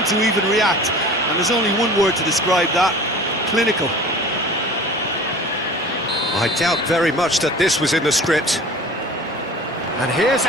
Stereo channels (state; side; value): normal; both; correlation 0.41